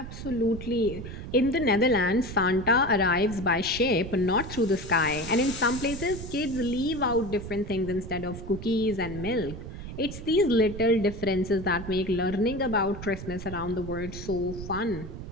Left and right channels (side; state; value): right; noise; rumble, 10 dB below the sound